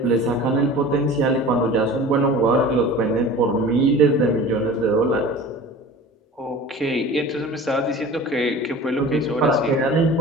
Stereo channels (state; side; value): normal; both; correlation 0.39